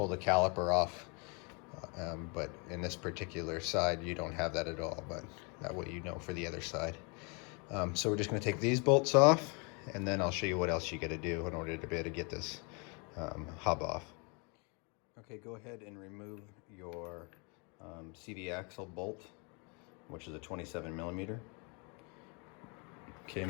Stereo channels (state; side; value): quieter; right; 33.2 dB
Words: the caliper off. But in this particular side, you don't have that at all, but that way you know for the other side. So we're just going to take these bolts off, and then I'll show you what else you got to do in order to be able to get this hub off. Okay, go ahead and remove your CV axle bolt, which is a 27 millimeter. Okay,